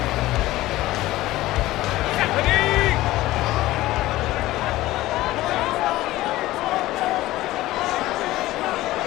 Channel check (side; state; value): right; quieter; 16.8 dB